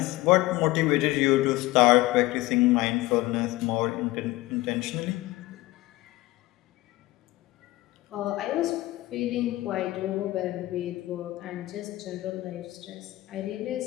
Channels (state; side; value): quieter; right; 18.6 dB